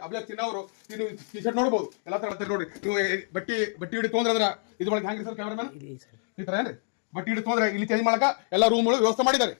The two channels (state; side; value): silent; right; digital silence